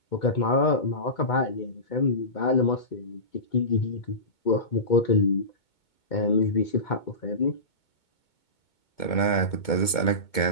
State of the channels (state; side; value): late; right; 2.2 ms